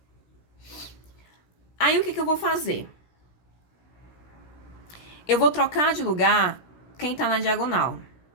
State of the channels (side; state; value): right; late; 16 ms